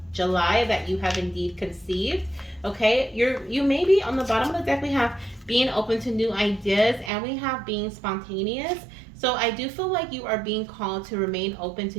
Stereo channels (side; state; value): left; drops out; at 7.1 s